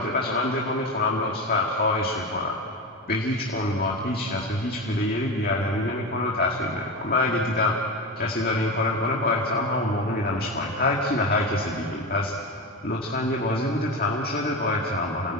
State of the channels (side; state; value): both; normal; correlation 0.21